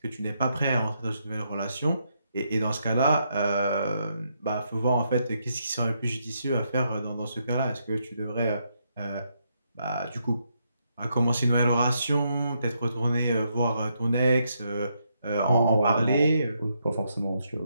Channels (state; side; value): inverted; both; correlation -0.78